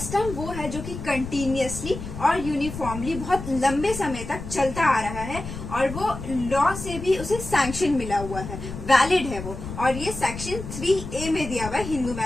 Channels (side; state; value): left; noise; rumble, 9 dB below the sound